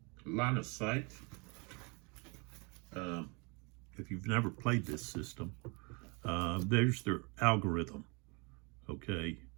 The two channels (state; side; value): quieter; left; 30.9 dB